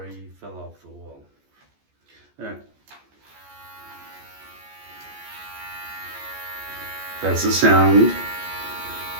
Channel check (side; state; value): left; late; 14 ms